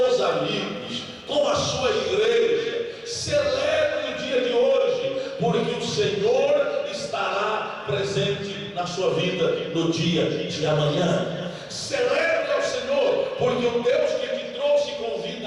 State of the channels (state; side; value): identical; both; correlation 1.00